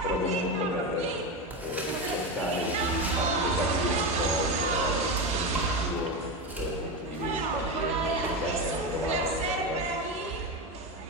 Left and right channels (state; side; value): normal; both; correlation 0.17